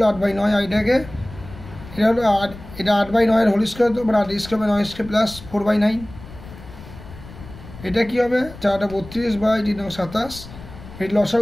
8/9, আইডাকে এটা হলো 8, এটা 8/9 এর হোল স্কোয়ার, তো মানে 8 স্কোয়ার বাই 9 স্কোয়ার প্লাস 4/9, এটা কী হবে 4টা 32 বাই 3 27, এই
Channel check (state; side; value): noise; left; rumble, 16 dB below the sound